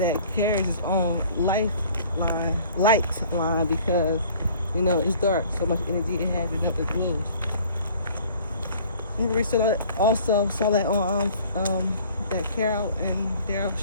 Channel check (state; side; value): inverted; both; correlation -0.52